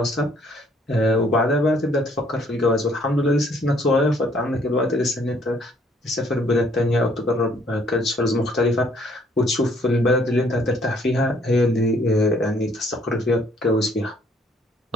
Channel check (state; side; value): normal; both; correlation 0.63